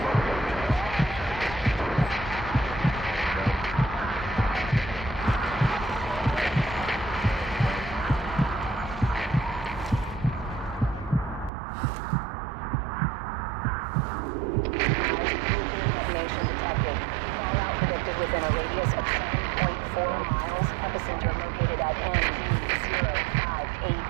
Within a radius of 7.4 miles, epicenter located at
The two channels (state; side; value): drops out; left; at 11.5 s